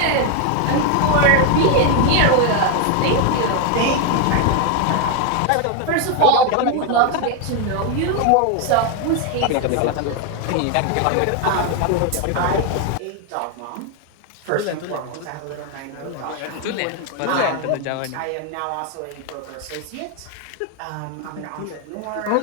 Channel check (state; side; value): different; both; correlation 0.01